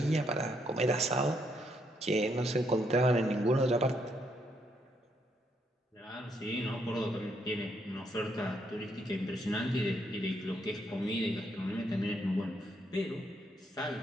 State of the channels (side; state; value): both; normal; correlation 0.75